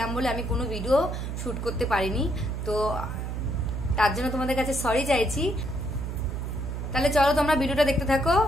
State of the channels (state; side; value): noise; right; hum, 4 dB below the sound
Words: বলে আমি কোনো ভিডিও শ্যুট করতে পারিনি। তো তার জন্য তোমাদের কাছে সরি চাইছি। তাহলে চলো তোমরা ভিডিওটা দেখতে থাকো।